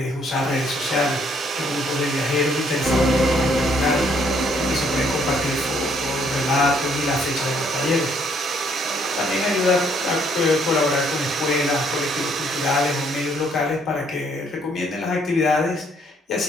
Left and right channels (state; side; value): normal; both; correlation 0.67